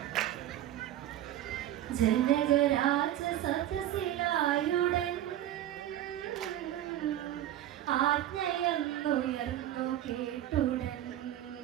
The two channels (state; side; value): quieter; left; 12.5 dB